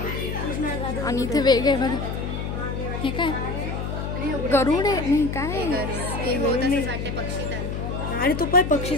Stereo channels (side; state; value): left; noise; hum, 4 dB below the sound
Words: आणि इथे वेग आहे बघा। हे काय गरुड आहे? नाही काय आणि तो पण पक्षी